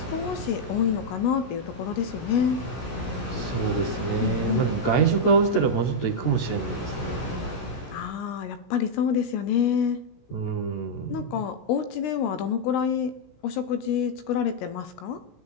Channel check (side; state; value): right; late; 16 ms